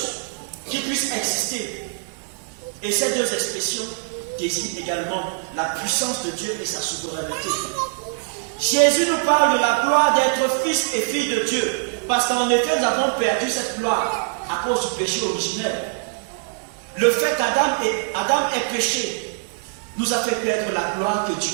qui puisse exister. Et ces deux expressions désignent également la puissance de Dieu et sa souveraineté. Jésus nous parle de la gloire d'être fils et fille de Dieu, parce qu'en effet nous avons perdu cette gloire à cause du péché originel. Le fait qu'Adam ait péché nous a fait perdre la gloire que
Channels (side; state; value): left; silent; 64 dB below the other